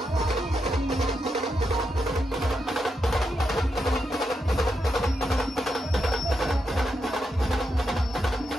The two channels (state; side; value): normal; both; correlation 0.84